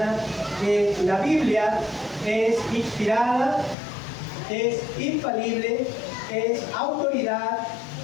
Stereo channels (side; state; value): right; drops out; at 3.8 s